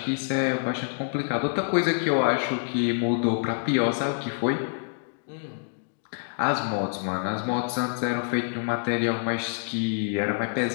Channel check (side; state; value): right; silent; digital silence